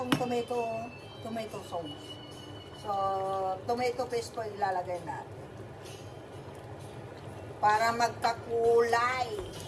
tomato sauce. So, tomato paste po ilalagay natin. Para magkakulay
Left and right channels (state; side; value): identical; both; correlation 1.00